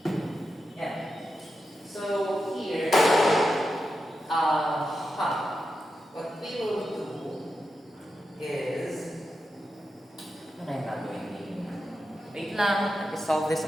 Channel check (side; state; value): both; normal; correlation 0.89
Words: Yeah. So here, what we will do is, ano na yung gagawin din? Wait lang, i-solve this